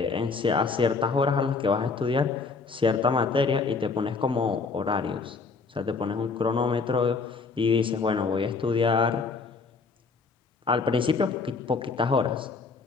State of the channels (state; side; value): quieter; right; 4.5 dB